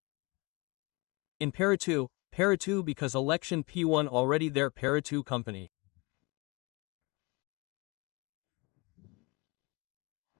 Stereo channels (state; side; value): quieter; right; 27.0 dB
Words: In para 2 because election P1 already there para 2 company.